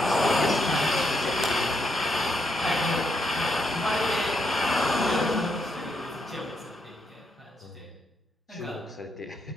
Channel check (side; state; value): both; normal; correlation 0.79